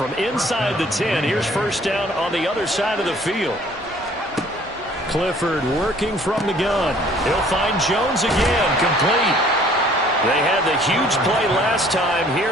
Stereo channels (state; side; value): normal; both; correlation 0.56